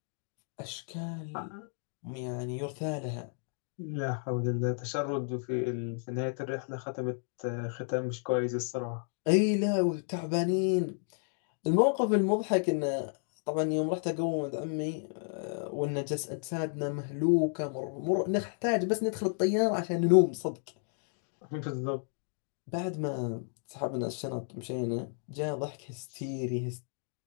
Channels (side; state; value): right; silent; 56 dB below the other